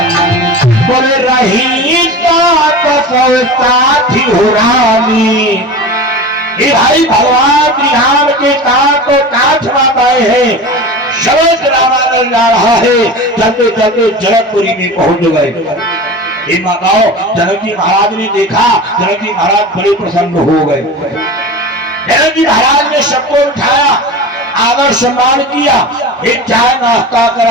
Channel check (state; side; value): normal; both; correlation 0.32